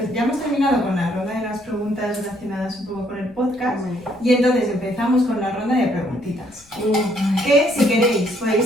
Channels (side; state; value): left; noise; rumble, 29 dB below the sound